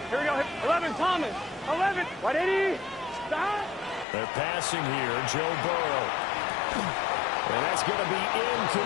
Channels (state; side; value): drops out; right; at 4.0 s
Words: Here we go. 11, Thomas. 11. 180. Stop. They're passing here. Joe Burrow. And that's going to be